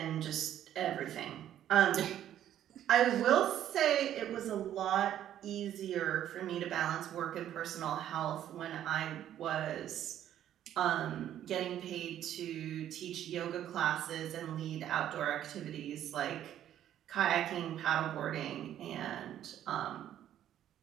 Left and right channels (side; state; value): left; quieter; 11.2 dB